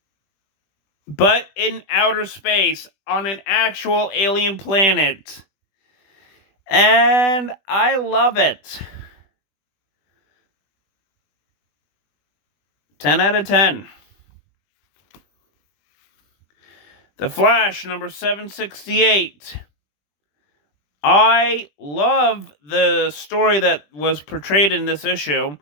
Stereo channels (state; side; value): late; right; 20 ms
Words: but in outer space, on an actual alien planet. And I love it. 10 out of 10. The Flash, number 768. I love the story that was portrayed in this issue,